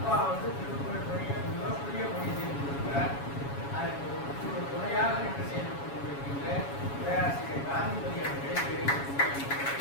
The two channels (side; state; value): right; late; 7.2 ms